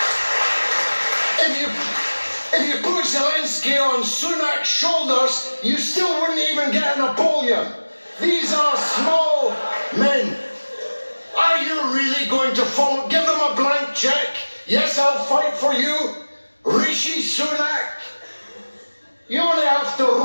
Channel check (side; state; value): both; inverted; correlation -1.00